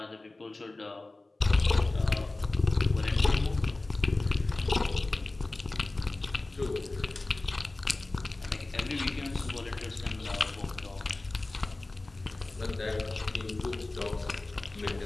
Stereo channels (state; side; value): quieter; right; 3.0 dB